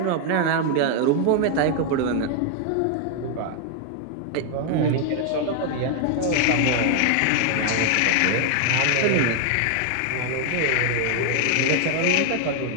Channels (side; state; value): both; different; correlation 0.00